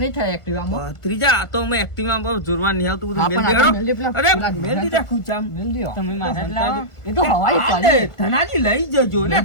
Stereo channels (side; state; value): right; late; 1.4 ms